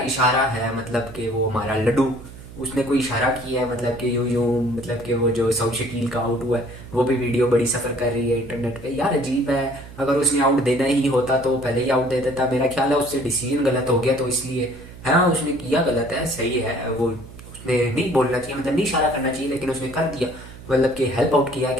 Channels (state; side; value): noise; right; hum, 17 dB below the sound